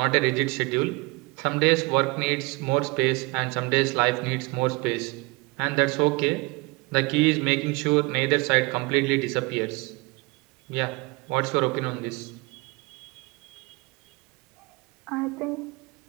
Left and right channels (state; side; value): quieter; left; 26.3 dB